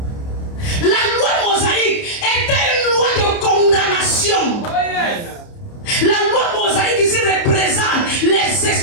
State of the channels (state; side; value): late; right; 29 ms